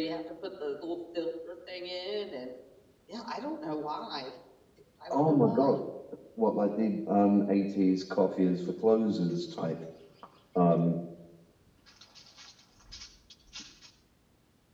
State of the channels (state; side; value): identical; both; correlation 1.00